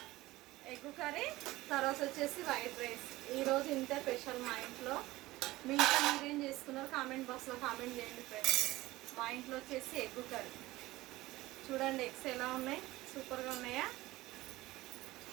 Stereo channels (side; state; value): left; quieter; 18.4 dB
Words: కర్రీ, తర్వాత వచ్చేసి వైట్ రైస్. ఈరోజు ఇంతే స్పెషల్ మా ఇంట్లో. మీ ఇంట్లో మీరేం చేసుకున్నారు కామెంట్ బాక్స్లో కామెంట్ చేయండి ఫ్రెండ్స్. మా ఇంట్లో వచ్చేసి ఎగ్ కర్రీ. చూడండి ఎగ్స్ ఎలా ఉన్నాయి, సూపర్గా ఉన్నాయా?